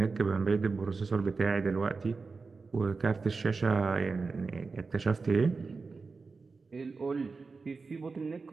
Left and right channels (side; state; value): left; quieter; 4.4 dB